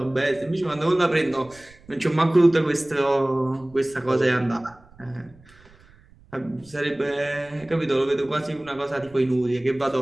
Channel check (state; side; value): noise; right; rumble, 26 dB below the sound